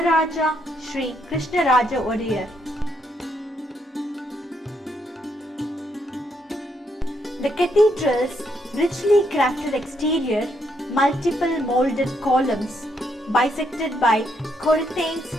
Sri Krishnaraja Wadiyar. The cathedral's richly crafted exterior, multiple molded columns bisected by Corinthians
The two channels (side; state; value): both; normal; correlation 0.75